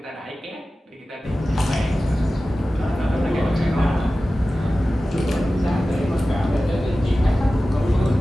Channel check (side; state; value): both; normal; correlation 0.95